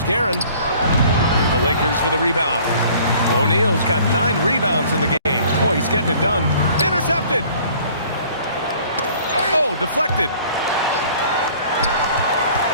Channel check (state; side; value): inverted; both; correlation -0.53